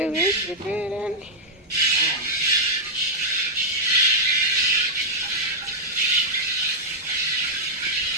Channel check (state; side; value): normal; both; correlation -0.07